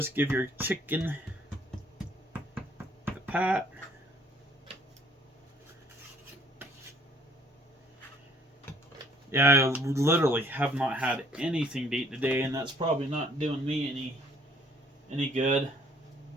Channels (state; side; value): normal; both; correlation 0.60